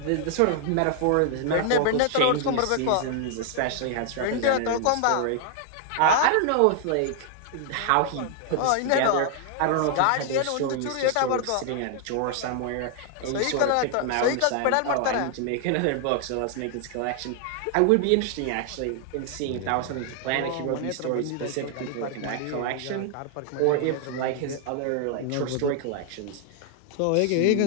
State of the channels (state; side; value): different; both; correlation 0.00